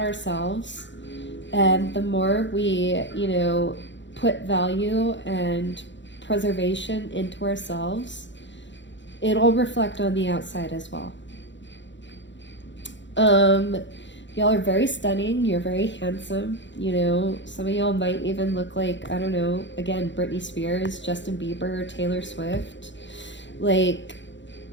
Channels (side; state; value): right; late; 0.53 ms